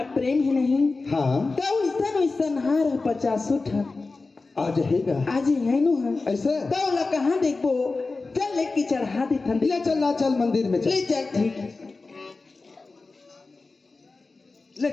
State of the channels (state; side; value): quieter; right; 3.7 dB